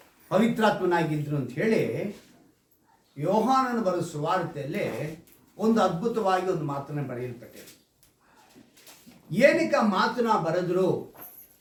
ಪವಿತ್ರಾತ್ಮನಾಗಿದ್ದರು ಅಂತ ಹೇಳಿ ಯೋಹಾನನ ಬರೆದ ಸುವಾರ್ತೆಯಲ್ಲಿ ಒಂದು ಅದ್ಭುತವಾಗಿ ಒಂದು ಮಾತನ್ನು ಬರೆಯಲ್ಪಟ್ಟಿದೆ. ಏನಕ್ಕೆ ಆ ಮಾತನ್ನ ಬರೆದ್ರು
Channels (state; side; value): identical; both; correlation 1.00